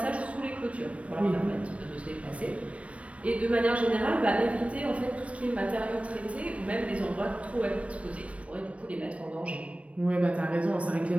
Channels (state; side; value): late; left; 0.063 ms